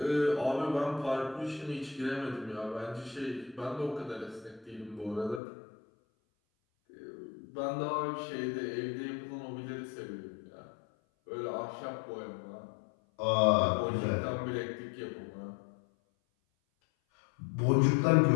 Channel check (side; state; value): right; drops out; at 5.4 s